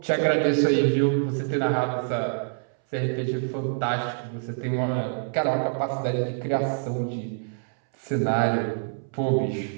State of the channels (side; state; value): left; silent; 61 dB below the other